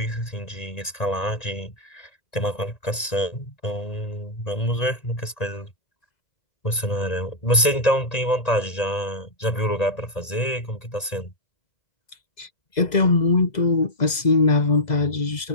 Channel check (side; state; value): right; late; 1.8 ms